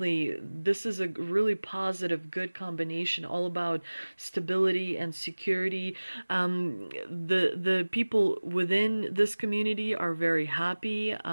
this is a really positive, good combination, all about stability and security. The people within this community are very happy.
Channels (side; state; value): both; inverted; correlation -1.00